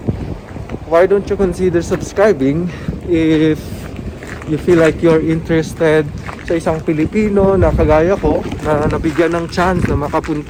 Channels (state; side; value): identical; both; correlation 1.00